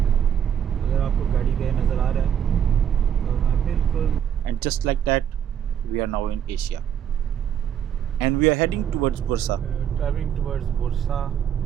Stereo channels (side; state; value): left; quieter; 9.0 dB